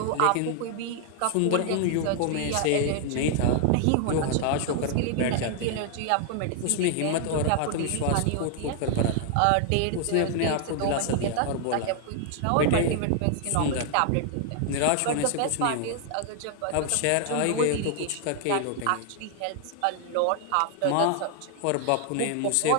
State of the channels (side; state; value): both; different; correlation 0.00